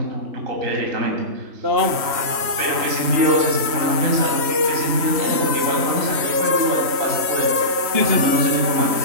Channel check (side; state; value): left; late; 3.1 ms